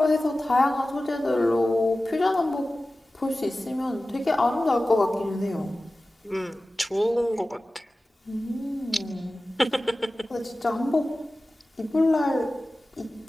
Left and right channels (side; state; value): both; normal; correlation 0.96